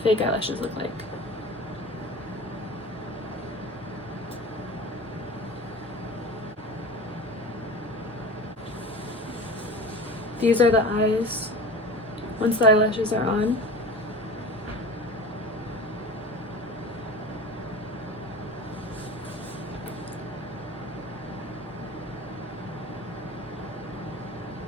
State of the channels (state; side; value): normal; both; correlation 0.35